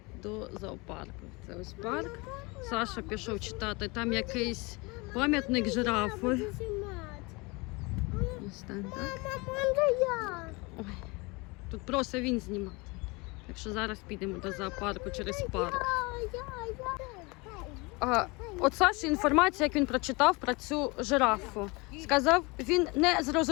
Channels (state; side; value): quieter; right; 26.5 dB